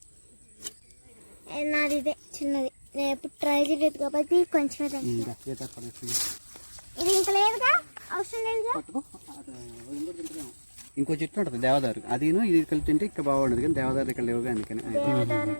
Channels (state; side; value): inverted; both; correlation -1.00